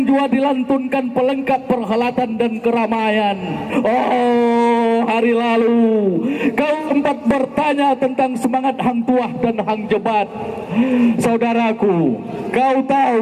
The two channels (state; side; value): identical; both; correlation 1.00